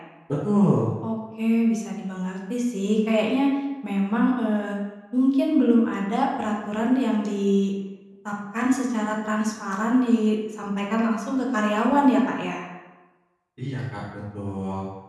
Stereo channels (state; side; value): identical; both; correlation 1.00